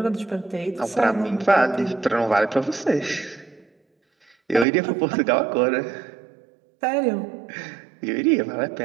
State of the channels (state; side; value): drops out; left; at 4.7 s